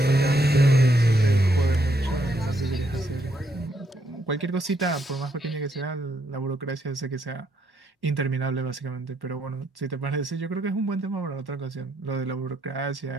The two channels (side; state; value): both; normal; correlation 0.75